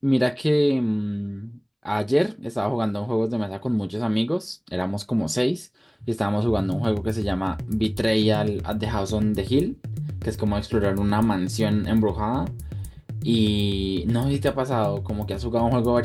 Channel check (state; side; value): identical; both; correlation 1.00